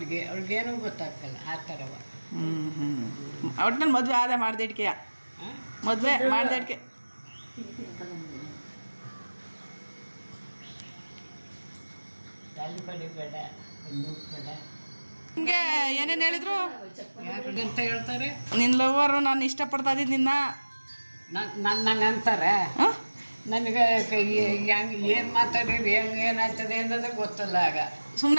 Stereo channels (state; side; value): inverted; both; correlation -1.00